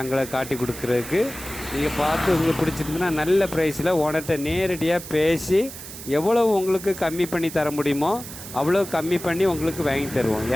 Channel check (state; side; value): noise; right; hiss, 12 dB below the sound